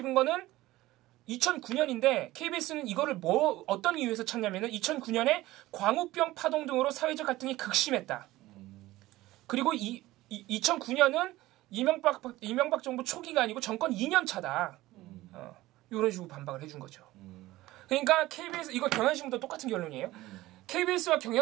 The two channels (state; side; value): quieter; left; 17.4 dB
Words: 거는 2009년인데 KBS는 이거를 어떤 이유에서 찾냐면은 2009년에 광우병 파동 등으로 사회적 갈등이 극심했다. 그리고 2009년은 이명박 정부 초기가 아니고 정권 2년 차다. 이런 식으로 반박을 해준 거죠. 그러니까 KBS 이거 경향신문도 똑같은 결론이에요. KBS와